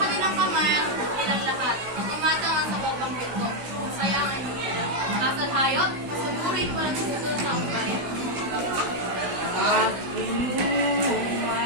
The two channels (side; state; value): left; late; 16 ms